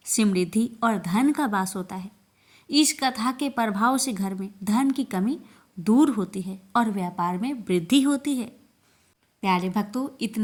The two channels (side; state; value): both; identical; correlation 1.00